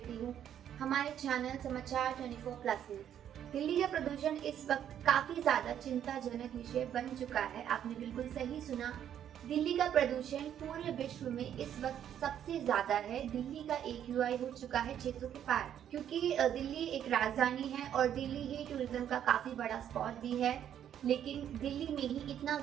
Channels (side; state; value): left; quieter; 9.9 dB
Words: हूँ हमारे चैनल समाचार 24+ में। दिल्ली का प्रदूषण इस वक्त काफी ज्यादा चिंताजनक विषय बन चुका है। आपने बिल्कुल सही सुना, दिल्ली का प्रदूषण पूरे विश्व में इस वक्त सबसे ज्यादा है। दिल्ली का AQI हो चुका है 600 के पार, क्योंकि दिल्ली एक राजधानी है और दिल्ली ही टूरिज्म का काफी बड़ा स्पॉट भी है। लेकिन दिल्ली में ही इतना